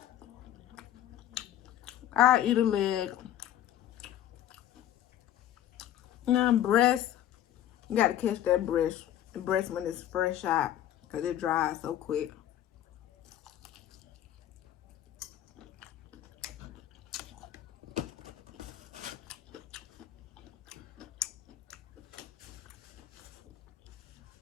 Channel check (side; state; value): right; quieter; 11.8 dB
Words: I eat a leg. Now, breast, you gotta catch that breast. The breast when it's fresh out, because it dries so quick.